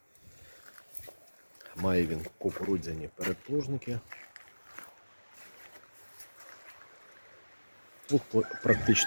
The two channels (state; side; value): inverted; both; correlation -1.00